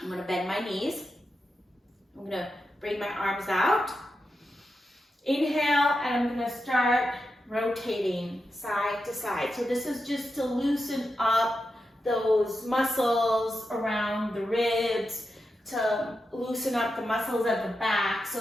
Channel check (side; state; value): both; normal; correlation 0.89